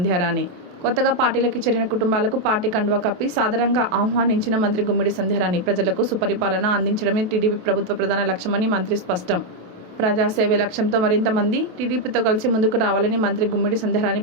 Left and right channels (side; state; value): left; late; 28 ms